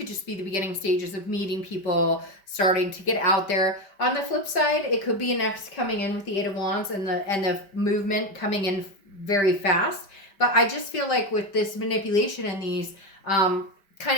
just be the beginning stages of meeting people, starting to get out there. On the flip side, it could be an ex coming in with the Eight of Wands and the movement coming in very fast. But I just feel like with this manipulation and these kind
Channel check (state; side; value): late; right; 5.1 ms